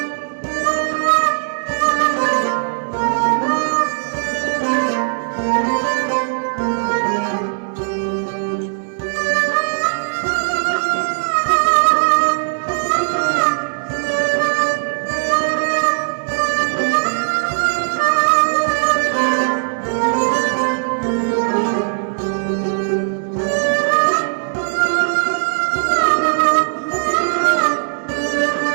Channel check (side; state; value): left; silent; digital silence